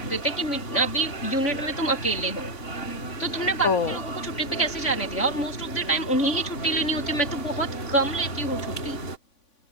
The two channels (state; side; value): late; right; 3.5 ms